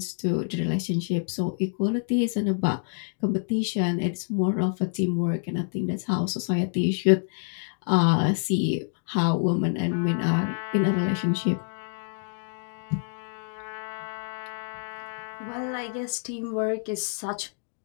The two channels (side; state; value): right; silent; digital silence